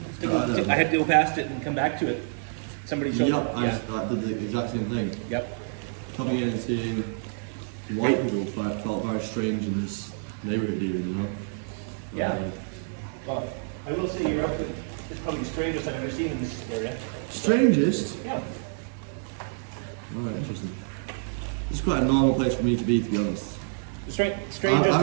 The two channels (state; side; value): silent; left; digital silence